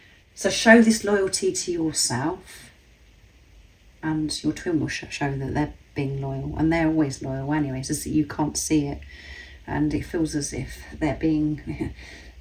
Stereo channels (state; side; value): identical; both; correlation 1.00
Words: So show this loyalty to yourself, and your twin will show that they're being loyal, and they're always loyal anyway. It's just that you can't see it, and it feels as if